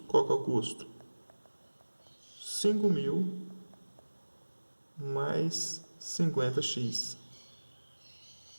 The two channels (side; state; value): both; inverted; correlation -1.00